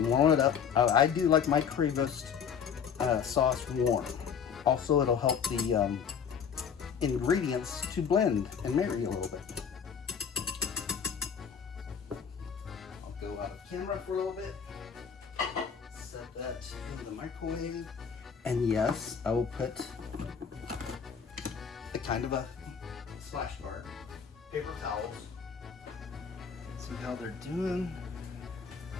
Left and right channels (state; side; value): quieter; right; 7.0 dB